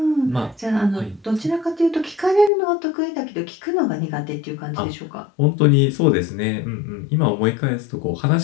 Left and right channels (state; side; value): drops out; right; at 2.5 s